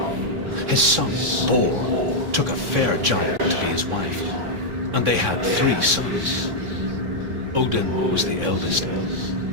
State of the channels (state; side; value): late; left; 3.6 ms